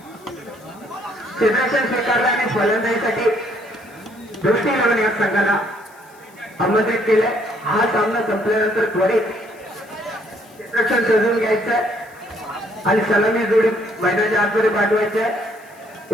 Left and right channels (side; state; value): left; noise; hiss, 28 dB below the sound